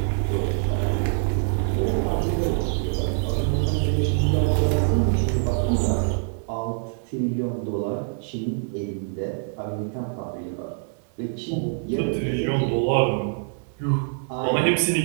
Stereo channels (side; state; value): left; silent; digital silence